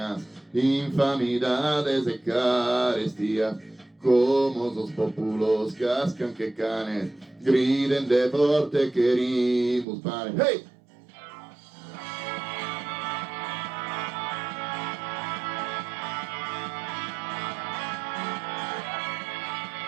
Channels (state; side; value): drops out; left; at 9.9 s